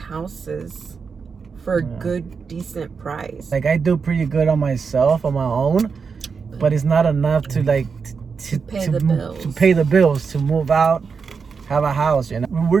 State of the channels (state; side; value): quieter; left; 5.5 dB